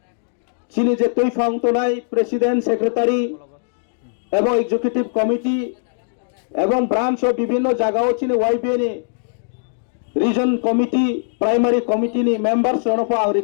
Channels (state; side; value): silent; right; digital silence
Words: চিনি যে তৈফাং তোনাই প্রেসিডেন্ট সেক্রেটারি এবং এক্সিকিউটিভ কমিটি এবং ব্রাঞ্চ ও বিভিন্ন জায়গাও চিনি YBN reason committee primary committee নি মেম্বার্স রনফা আং